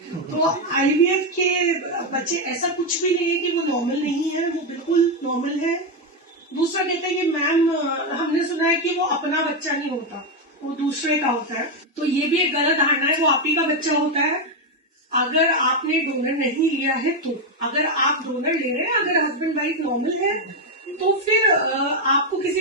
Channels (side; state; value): both; normal; correlation 0.05